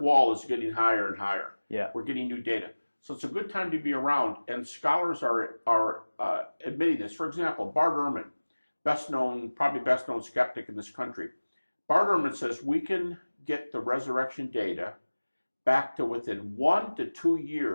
wall is getting higher and higher. We're getting new data. So it's a good time to be around, and scholars are admitting this. For example, Bart Ehrman, probably best known skeptic in this country. Bart Ehrman says we can get the resurrection data back to within 1 to 2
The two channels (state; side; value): inverted; both; correlation -1.00